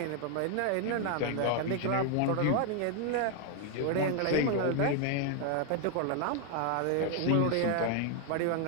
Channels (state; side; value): different; both; correlation 0.00